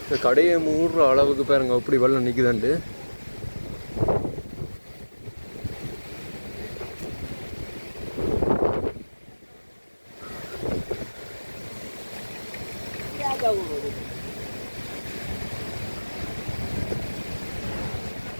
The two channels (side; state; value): both; inverted; correlation -1.00